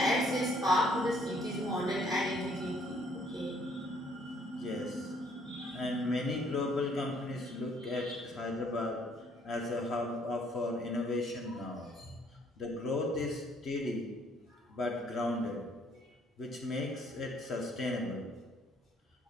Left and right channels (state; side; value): normal; both; correlation 0.64